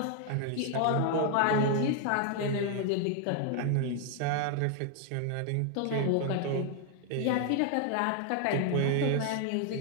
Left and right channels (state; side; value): different; both; correlation 0.00